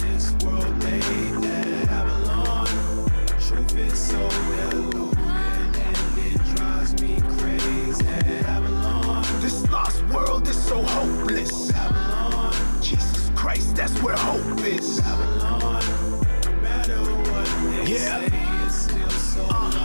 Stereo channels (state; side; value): inverted; both; correlation -1.00